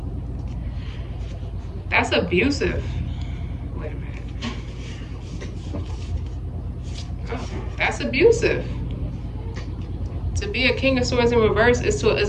That's abusive. Wait a minute. Oh, that's abusive. To be a King of Swords in reverse is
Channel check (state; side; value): identical; both; correlation 1.00